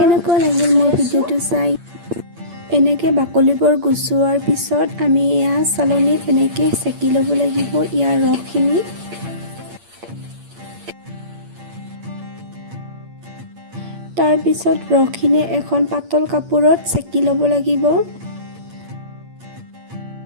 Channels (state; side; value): late; left; 8.7 ms